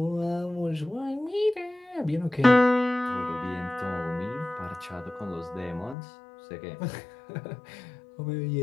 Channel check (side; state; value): right; drops out; at 6.0 s